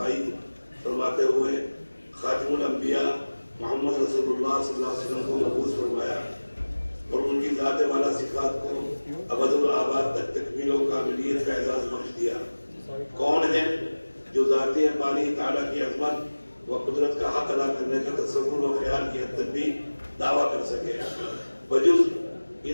فرماتے ہوئے خاتم الانبیاء محمد رسول اللہ صلی اللہ علیہ وسلم کو مبعوث فرمایا اور ان کی ذات والا صفات کو ابد الآباد تک تکمیل و کاملیت کا اعزاز بخش دیا۔ کون ہے جو ذاتی باری تعالیٰ کی عظمت و قدرت کا حق ادا کرنے کا تصور و خیال کی حد تک بھی دعویٰ کر سکے بجز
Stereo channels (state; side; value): inverted; both; correlation -1.00